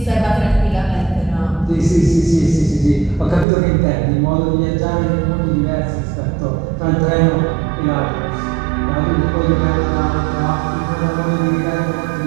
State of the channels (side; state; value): left; drops out; at 3.5 s